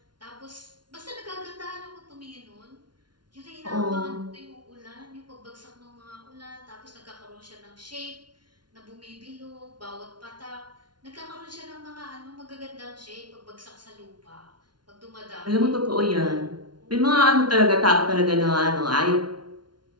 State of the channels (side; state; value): left; late; 0.70 ms